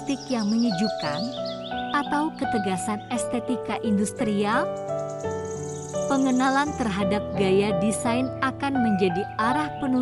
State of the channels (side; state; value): both; identical; correlation 1.00